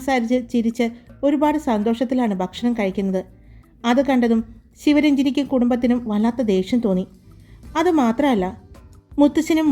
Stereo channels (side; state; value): both; identical; correlation 1.00